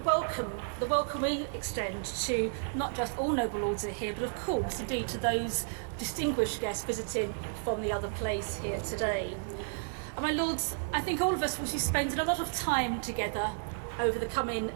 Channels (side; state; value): left; silent; digital silence